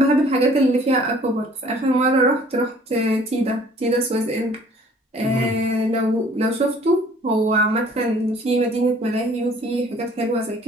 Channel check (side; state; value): both; normal; correlation 0.55